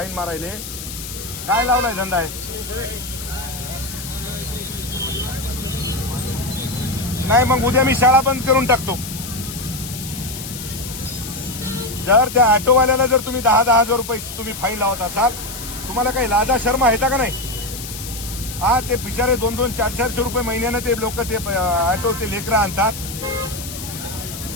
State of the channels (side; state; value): left; noise; hiss, 10 dB below the sound